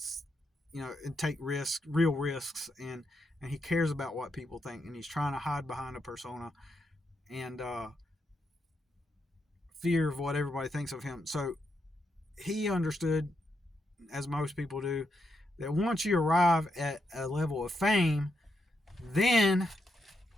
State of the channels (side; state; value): both; normal; correlation 0.82